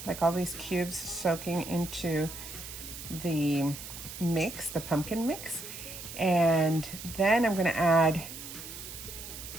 like all these cubes soaking into the mix, the pumpkin mix. And then I'm going to add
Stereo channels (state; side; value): noise; right; hiss, 11 dB below the sound